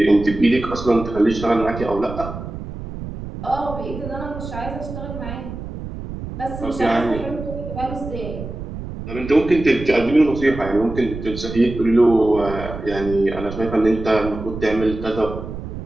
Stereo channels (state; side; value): noise; right; rumble, 9 dB below the sound